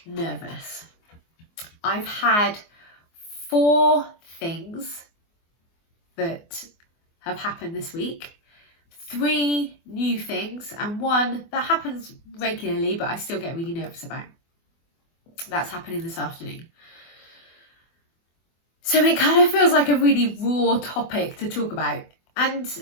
nervous. I've had 4 things that have happened this week. 3 new things and 1 that happens regularly but I still get really nervous about. That's happening this afternoon. So it kind of feels like a really raw topic to talk about, and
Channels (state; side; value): late; right; 24 ms